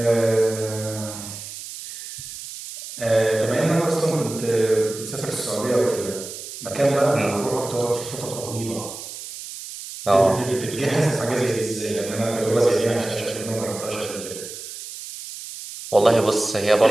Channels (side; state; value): right; noise; hiss, 11 dB below the sound